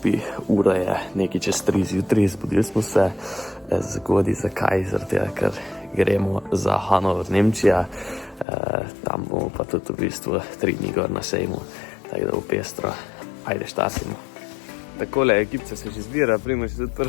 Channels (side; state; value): right; drops out; at 8.5 s